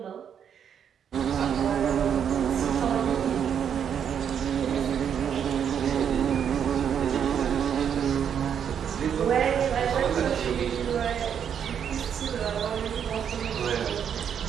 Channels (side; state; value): left; quieter; 8.2 dB